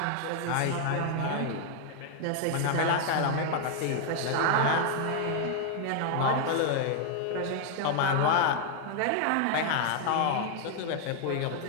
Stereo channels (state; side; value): different; both; correlation 0.00